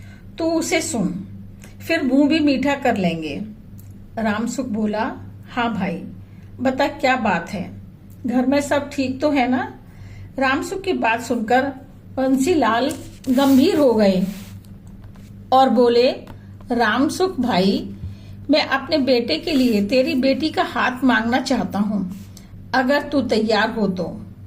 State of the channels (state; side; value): identical; both; correlation 1.00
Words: तू उसे सुन, फिर मुंह भी मीठा कर लेंगे। रामसुख बोला, हाँ भाई बता क्या बात है, घर में सब ठीक तो है ना? रामसुख की बात सुनकर बंसीलाल गंभीर हो गए और बोले, रामसुख भाई, मैं अपने बेटे के लिए तेरी बेटी का हाथ मांगना चाहता हूँ, अगर तू तैयार हो तो।